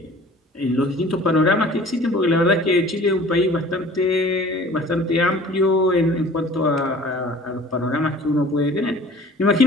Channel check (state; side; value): normal; both; correlation 0.47